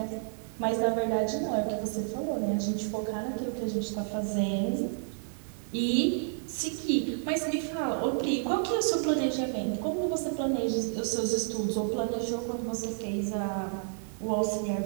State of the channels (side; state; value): left; silent; digital silence